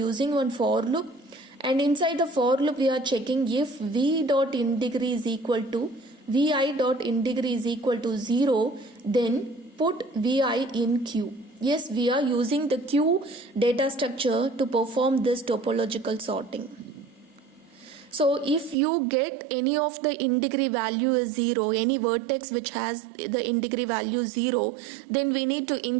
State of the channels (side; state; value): left; drops out; at 18.8 s